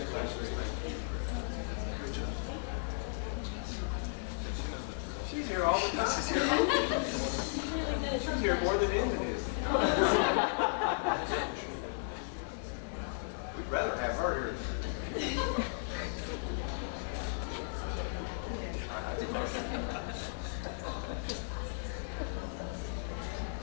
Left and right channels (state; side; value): silent; right; digital silence